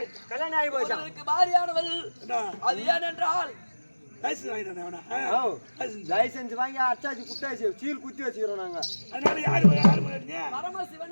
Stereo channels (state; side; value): inverted; both; correlation -1.00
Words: பாரியானவள் அது ஏனென்றால் லைசன்ஸ் வாங்கி அச்சாச்சு குட்டாச்சு சீல் குத்தி வச்சுக்கிறோம் நாங்க.